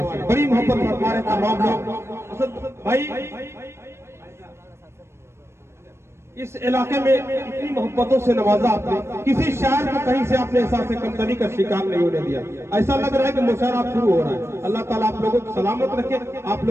से, बड़ी मोहब्बत फरमा रहे तमाम लोग। असद भाई, इस इलाके में इतनी मोहब्बतों से नवाजा आपने, किसी शायर को कहीं से आपने एहसास से कमतरी का शिकार नहीं होने दिया। ऐसा लग रहा है कि मुशायरा आप शुरू हो रहा है। अल्लाह ताला आप लोगों को सलामत रखे, आप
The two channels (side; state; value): left; late; 0.13 ms